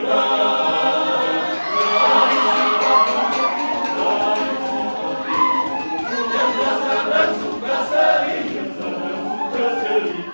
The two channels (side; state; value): both; inverted; correlation -1.00